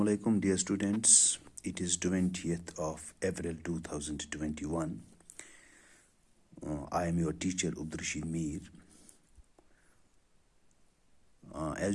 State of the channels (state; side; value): identical; both; correlation 1.00